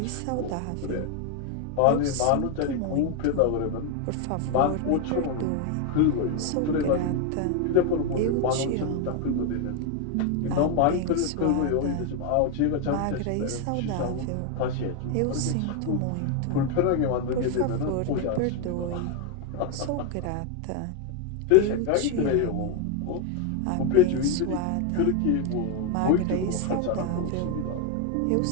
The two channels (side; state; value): both; different; correlation 0.01